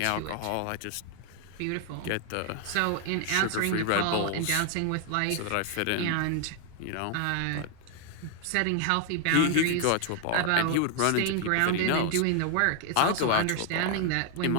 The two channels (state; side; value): different; both; correlation 0.00